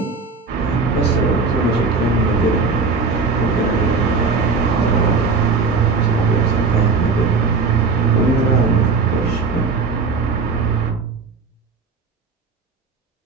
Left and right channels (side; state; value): left; quieter; 4.5 dB